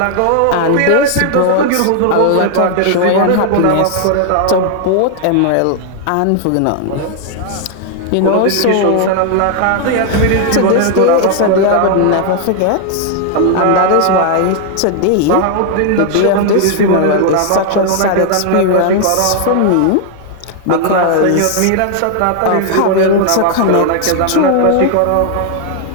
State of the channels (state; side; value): different; both; correlation 0.00